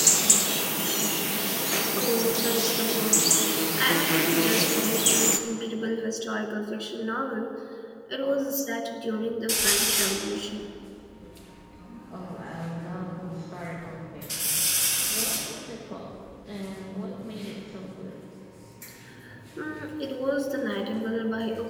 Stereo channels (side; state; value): both; identical; correlation 1.00